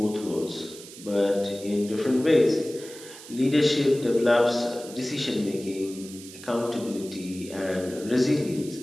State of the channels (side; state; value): right; noise; hiss, 16 dB below the sound